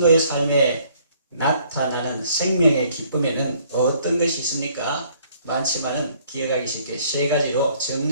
삶에 나타나는 생명의 기쁨에는 어떤 것이 있습니까? 많지만은 기억하기 쉽게 세 가지로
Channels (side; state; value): both; inverted; correlation -0.62